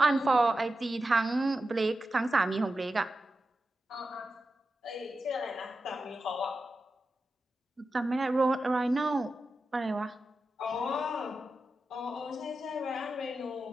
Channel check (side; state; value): both; normal; correlation 0.91